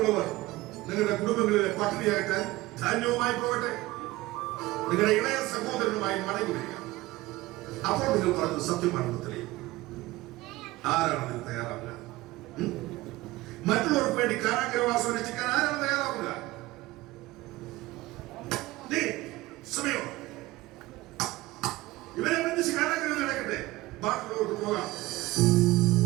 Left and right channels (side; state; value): left; quieter; 18.9 dB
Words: നിങ്ങളുടെ കുടുംബങ്ങളിലെ പട്ടിണിയാക്കാൻ ധാന്യവുമായി പോകട്ടെ. നിങ്ങളുടെ ഇളയ സഹോദരനുമായി മടങ്ങി വരിക. അപ്പോൾ നിങ്ങൾ പറഞ്ഞത് സത്യമാണെന്ന് തെളിയും. ആരാണ് നിങ്ങൾ തയ്യാറാവുക? മറ്റുള്ളവർക്ക് വേണ്ടി കാരാഗ്രഹവാസം രക്ഷിക്കാൻ ആരാണ് തയ്യാറാവുക? സമയോ ഇവരെ ബന്ധിച്ച് കാരാഗ്രഹം നടക്കട്ടെ. ബാക്കിയുള്ളവർക്ക് പോകാം.